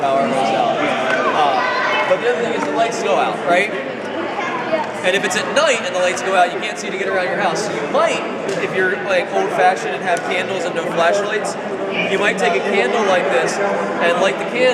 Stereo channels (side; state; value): both; identical; correlation 1.00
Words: power goes out. But the other thing is the lights go out, right? And if it's at night and the lights go out, you can't see to get around your house. So you might, if you're like old-fashioned and have candles and no flashlights, you might take a candle like this and light the